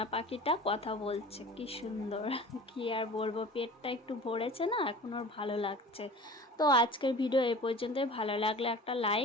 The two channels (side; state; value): both; normal; correlation 0.40